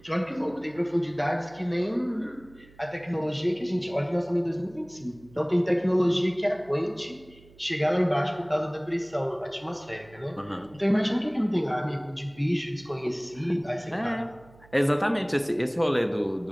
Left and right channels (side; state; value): right; noise; hum, 25 dB below the sound